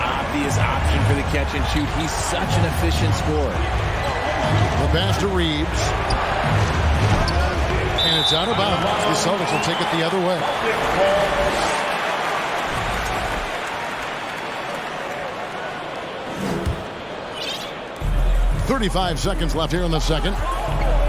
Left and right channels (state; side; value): identical; both; correlation 1.00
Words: option for the catch and shoot. He's such an efficient scorer. The pass to Reeves. And it's out of bounds. The Celtics will take it the other way. .35 seconds left here in the second.